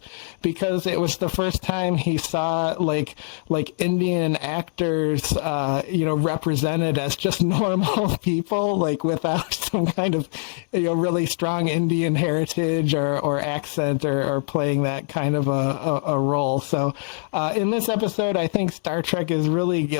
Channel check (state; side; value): silent; right; 57 dB below the other